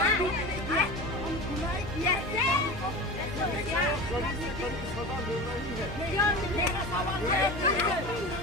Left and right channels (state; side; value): normal; both; correlation 0.30